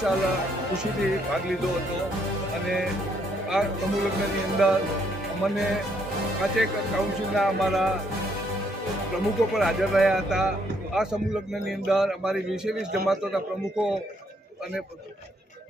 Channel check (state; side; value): normal; both; correlation 0.71